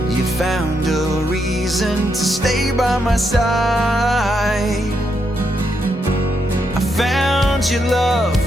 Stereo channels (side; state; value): both; normal; correlation 0.80